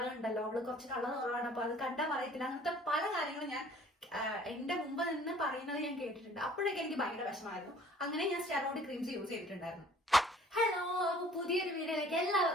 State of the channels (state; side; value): normal; both; correlation 0.53